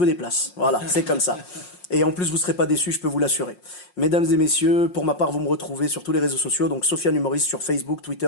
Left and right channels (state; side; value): late; right; 5.6 ms